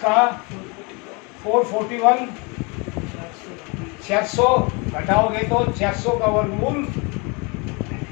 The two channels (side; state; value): right; quieter; 30.2 dB